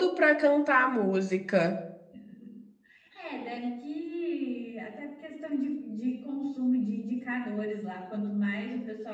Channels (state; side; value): identical; both; correlation 1.00